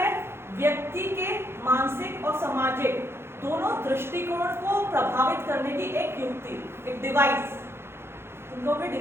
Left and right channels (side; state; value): left; late; 0.12 ms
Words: व्यक्ति के मानसिक और सामाजिक दोनों दृष्टिकोण को प्रभावित करने की एक युक्ति, एक डिवाइस। तुम कहोगे